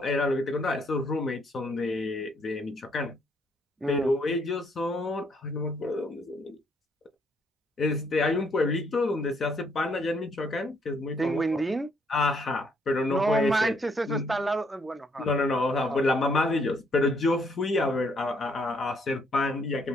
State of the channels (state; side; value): normal; both; correlation 0.69